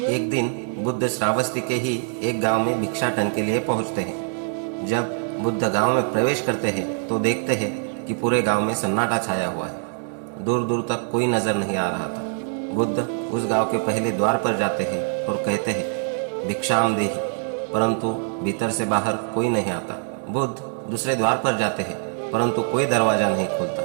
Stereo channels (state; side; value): silent; left; 63 dB below the other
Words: एक दिन बुद्ध श्रावस्ती के ही एक गांव में भिक्षाटन के लिए पहुंचते हैं। जब बुद्ध गांव में प्रवेश करते हैं तो देखते हैं कि पूरे गांव में सन्नाटा छाया हुआ है। दूर दूर तक कोई नजर नहीं आ रहा था। बुद्ध उस गांव के पहले द्वार पर जाते हैं और कहते हैं, भिक्षाम देहि, परंतु भीतर से बाहर कोई नहीं आता। बुद्ध दूसरे द्वार पर जाते हैं परंतु कोई दरवाजा नहीं खुलता।